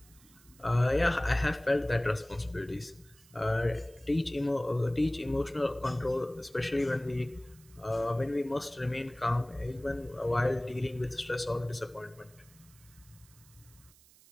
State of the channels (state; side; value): noise; right; hiss, 26 dB below the sound